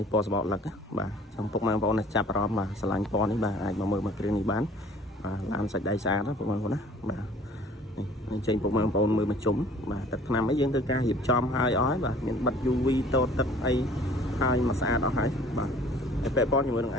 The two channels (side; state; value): both; normal; correlation 0.51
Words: េះពណ៌សបកលឹកបាទចំពុកម៉ែបងប្អូនចាប់អារម្មណ៍បាទឆ្លាញ់ពណ៌នេះបាទអាចមកមើលមកគ្រឿងនេះបានបាទឡានសាច់ដៃស្អាតណាពុកម៉ែបងប្អូនណាបាទនេះចេញពុកម៉ែបងប្អូនមើលមកជុំបាទទឹកថ្នាំអីយើងធ្វើការរៀបចំឲ្យអស់ហើយបាទមានបិទ UV តូតទឹកអីហើយមកស្អាតអស់ហើយបាទតែពាក់ព័ន្ធជាមួយនឹង